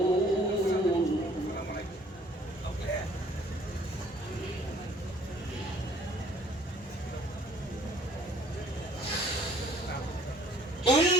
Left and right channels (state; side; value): normal; both; correlation 0.57